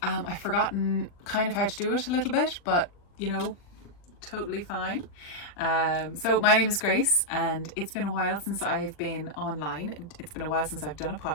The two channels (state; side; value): late; right; 40 ms